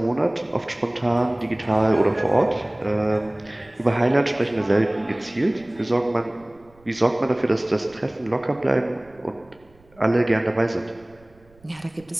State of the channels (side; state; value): right; noise; rumble, 29 dB below the sound